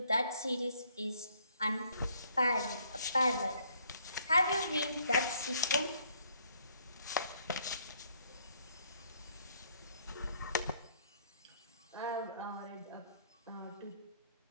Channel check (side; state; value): both; inverted; correlation -0.65